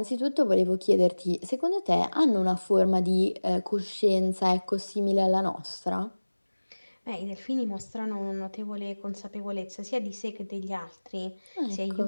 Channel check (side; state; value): both; inverted; correlation -1.00